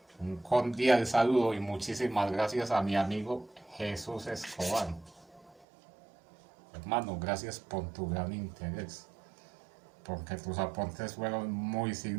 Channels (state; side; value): drops out; left; at 5.7 s